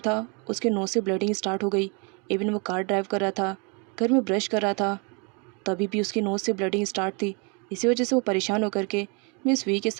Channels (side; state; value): left; quieter; 33.5 dB